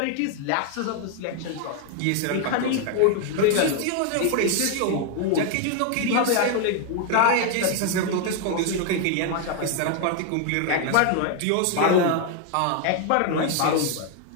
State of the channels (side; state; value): both; different; correlation 0.00